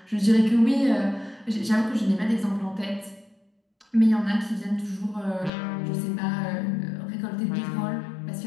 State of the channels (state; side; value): drops out; right; at 5.5 s